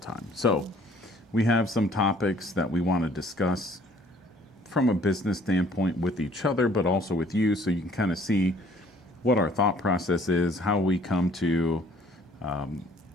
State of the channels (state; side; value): normal; both; correlation 0.57